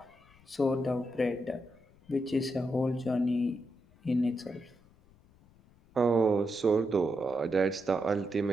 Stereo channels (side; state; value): left; noise; rumble, 28 dB below the sound